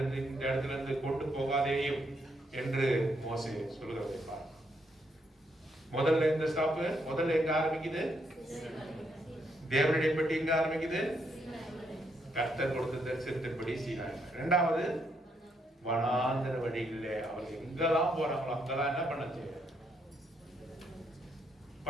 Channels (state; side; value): normal; both; correlation 0.76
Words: இந்த இடத்துல இருந்து கொண்டு போகாதேயும் என்று மோசே சொல்லுகிறதை பாருங்க. முதல்ல இந்த ஸ்டாப்பு, முதல்ல எங்க ஆரம்பிக்குது? தேவனுடைய பெட்டி எங்க ஆரம்பிக்குது? கர்த்தர் கொடுத்த தரிசனத்தின்படி சீனாய். இரண்டாவது, வனாந்தர வழிகளிலே அவர்கள் எங்கெல்லாம் போறாங்களோ அங்கெல்லாம் என்ன பண்ணுச்சு?